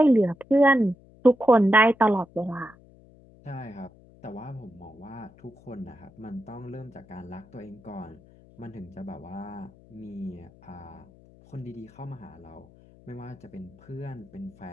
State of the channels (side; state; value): left; noise; hum, 25 dB below the sound